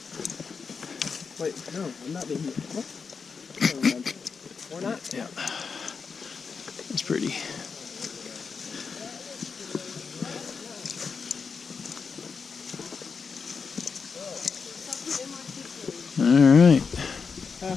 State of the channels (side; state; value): right; quieter; 5.4 dB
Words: Wait, no, I'm not being here. What? Or not? Yeah. It's pretty. All right.